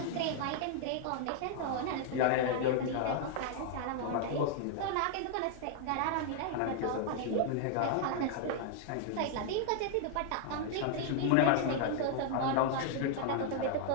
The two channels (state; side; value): different; both; correlation 0.00